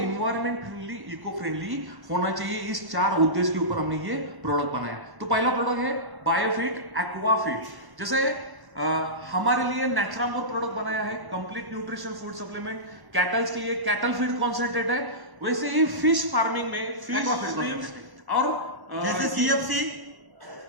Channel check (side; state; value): left; late; 1.1 ms